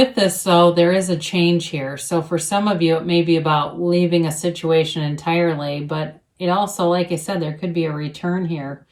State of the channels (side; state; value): both; identical; correlation 1.00